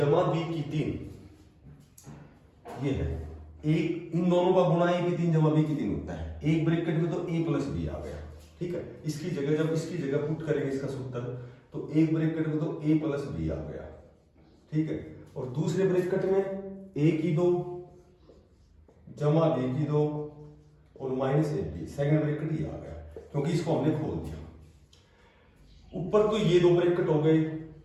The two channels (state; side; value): identical; both; correlation 1.00